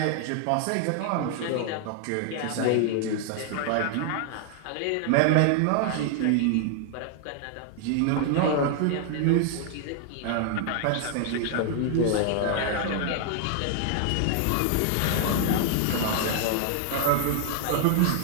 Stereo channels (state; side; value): different; both; correlation 0.00